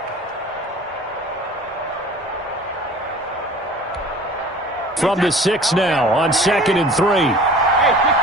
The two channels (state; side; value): normal; both; correlation 0.45